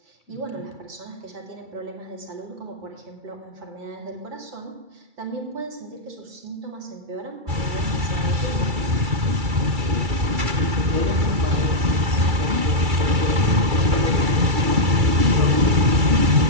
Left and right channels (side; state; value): left; late; 2.3 ms